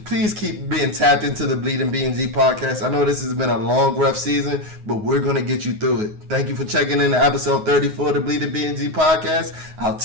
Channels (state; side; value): late; left; 9.5 ms